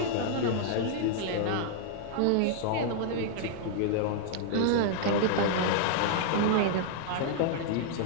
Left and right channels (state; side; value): different; both; correlation -0.01